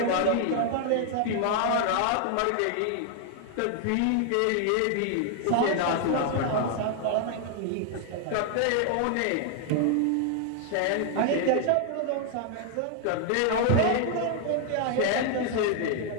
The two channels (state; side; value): different; both; correlation 0.00